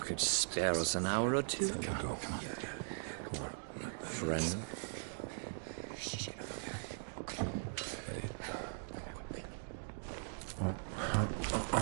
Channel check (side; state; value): left; silent; digital silence